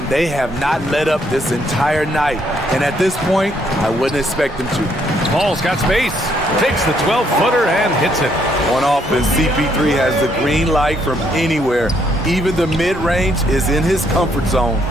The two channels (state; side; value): normal; both; correlation 0.71